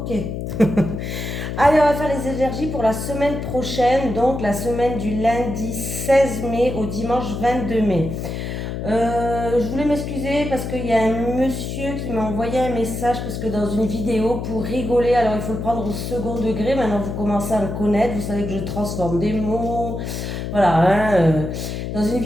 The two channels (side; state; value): left; noise; hum, 5 dB below the sound